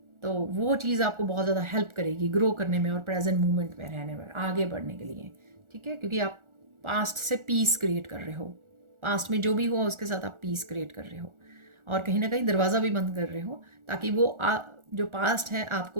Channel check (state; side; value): late; left; 1.4 ms